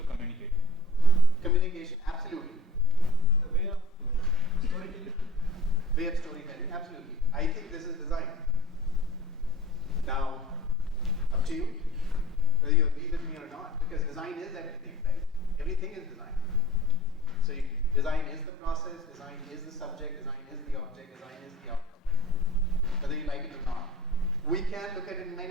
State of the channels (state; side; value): normal; both; correlation 0.46